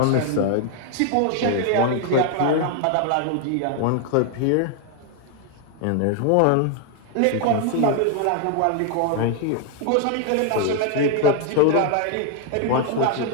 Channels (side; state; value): both; different; correlation 0.00